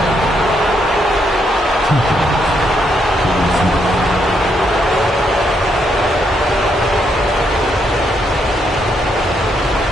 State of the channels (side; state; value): both; normal; correlation 0.76